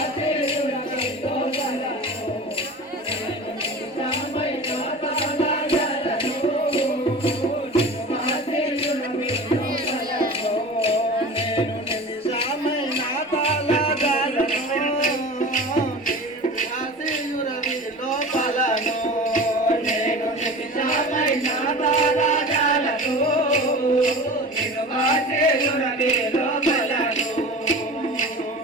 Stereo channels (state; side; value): normal; both; correlation 0.35